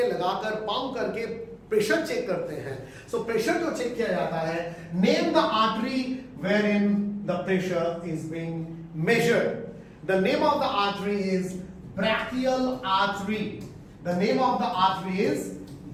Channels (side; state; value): both; identical; correlation 1.00